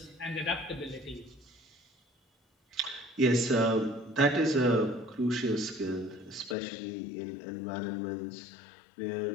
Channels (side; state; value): right; drops out; at 6.6 s